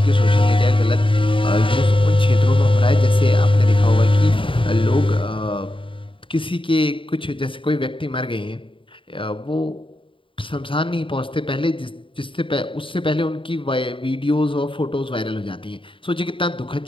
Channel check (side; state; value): right; late; 0.25 ms